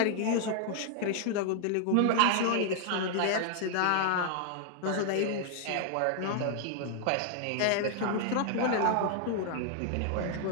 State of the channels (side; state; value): both; different; correlation 0.00